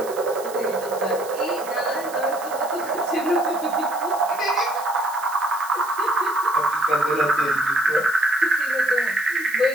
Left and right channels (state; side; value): noise; right; hiss, 16 dB below the sound